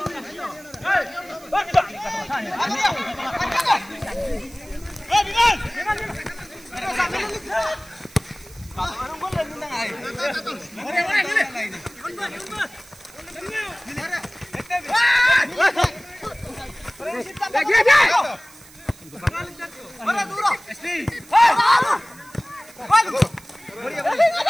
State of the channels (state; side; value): noise; right; hiss, 22 dB below the sound